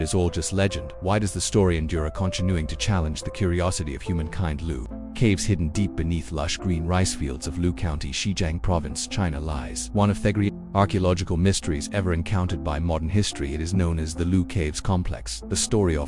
is all just legend, why does the story endure, continuing to challenge the curiosity of humankind? Lu Caves, hidden deep beneath lush green rice fields of Lu County, Xizang Province, China, lies one of the great archaeological mysteries ever encountered by modern history. It is known as the Lu Caves Complex. The story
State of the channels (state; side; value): identical; both; correlation 1.00